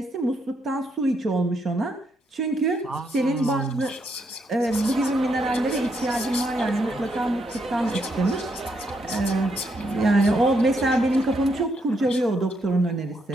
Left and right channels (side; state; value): both; normal; correlation 0.77